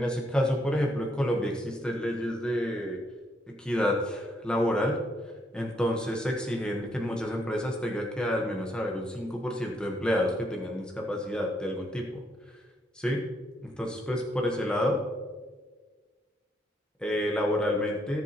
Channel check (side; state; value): both; normal; correlation 0.73